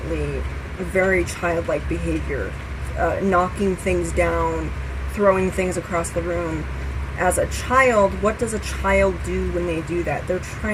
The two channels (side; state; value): both; identical; correlation 1.00